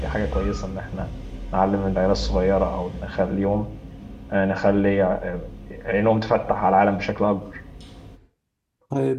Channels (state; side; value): identical; both; correlation 1.00